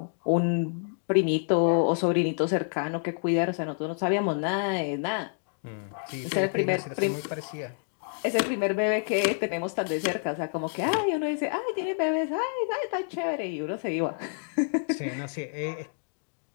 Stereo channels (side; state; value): right; silent; digital silence